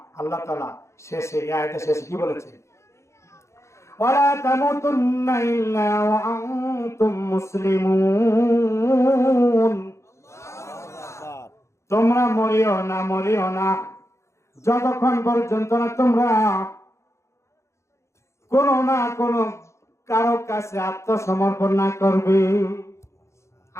আল্লাহ তাআলা শেষে, এই আয়াতের শেষে কি বলেছে? ওয়ালা তামুতুন্না ইল্লা ওয়া আনতুম মুসলিমুন। তোমরা মরিও না যতক্ষণ পর্যন্ত না তোমরা কোনো না কোনো কারো কাছে আত্মসমর্পণ না করবে।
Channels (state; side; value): late; right; 0.14 ms